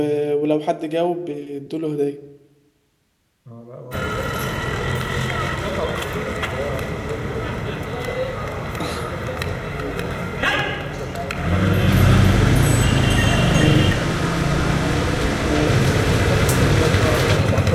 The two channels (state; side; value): identical; both; correlation 1.00